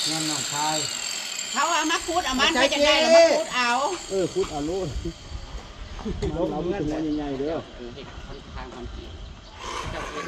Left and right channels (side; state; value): both; identical; correlation 1.00